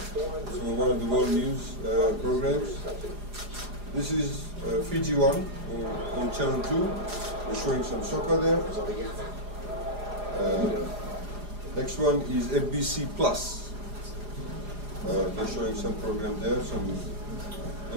So one of the world news programs. This is Fiji One on channel 2. We're showing some soccer there. Next one is FBC Plus. They're showing some program there, some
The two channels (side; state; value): left; late; 4.9 ms